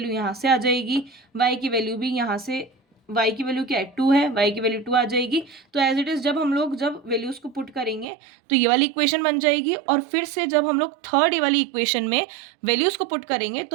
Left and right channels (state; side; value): drops out; left; at 8.1 s